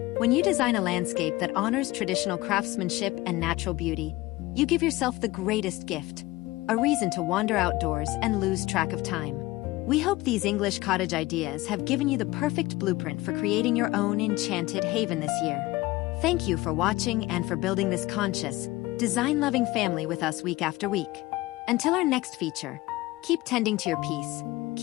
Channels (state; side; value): quieter; right; 19.4 dB